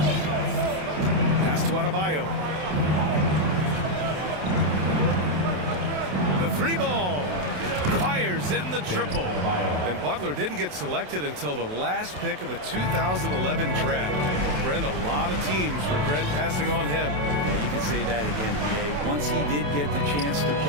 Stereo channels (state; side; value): late; left; 27 ms